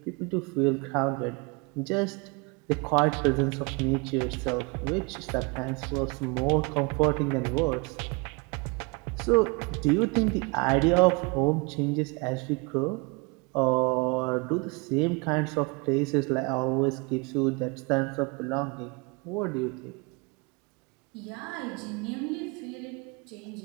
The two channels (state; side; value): quieter; left; 29.4 dB